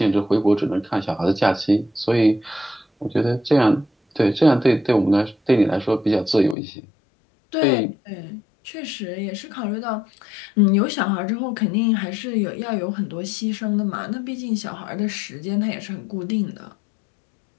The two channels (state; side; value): drops out; right; at 6.6 s